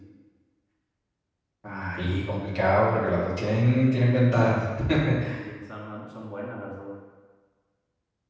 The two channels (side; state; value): both; identical; correlation 1.00